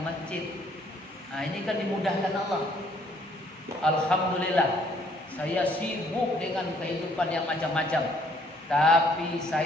masjid. Nah, ini kan dimudahkan Allah. Alhamdulillah, saya sibuk dengan kehidupan yang macam-macam, tapi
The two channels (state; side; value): normal; both; correlation 0.64